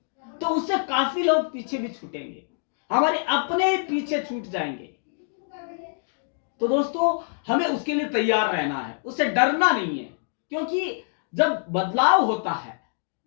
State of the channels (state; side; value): silent; right; digital silence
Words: तो उससे काफी लोग पीछे भी छूटेंगे, हमारे अपने पीछे छूट जाएंगे। तो दोस्तों, हमें उसके लिए तैयार रहना है, उससे डरना नहीं है। क्योंकि जब बदलाव होता है,